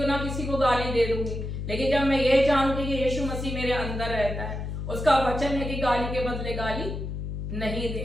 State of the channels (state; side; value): noise; left; hum, 5 dB below the sound